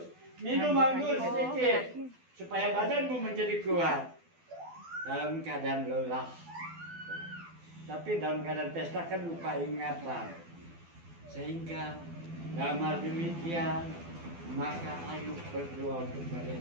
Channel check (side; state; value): left; late; 12 ms